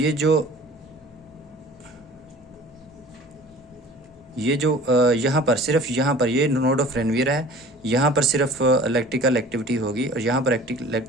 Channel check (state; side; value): normal; both; correlation 0.45